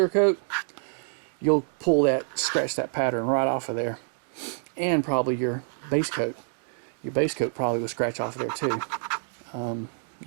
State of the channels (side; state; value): left; silent; 60 dB below the other